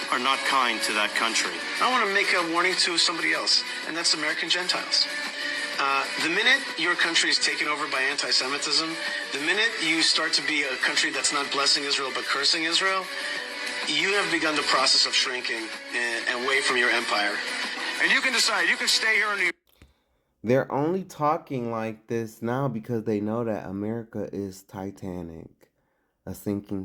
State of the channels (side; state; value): both; identical; correlation 1.00